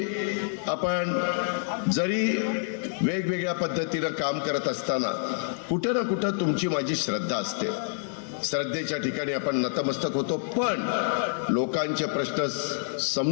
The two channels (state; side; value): silent; right; digital silence